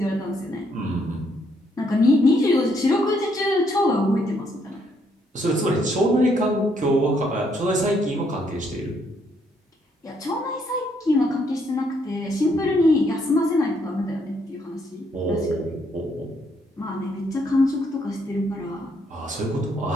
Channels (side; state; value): both; normal; correlation 0.72